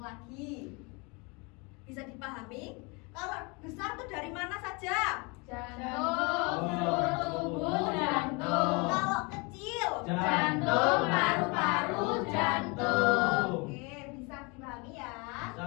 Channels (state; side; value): quieter; right; 29.5 dB